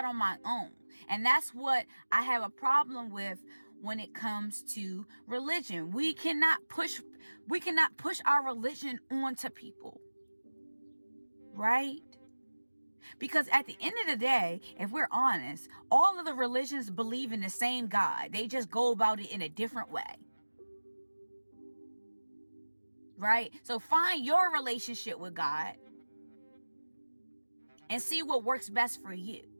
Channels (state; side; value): inverted; both; correlation -1.00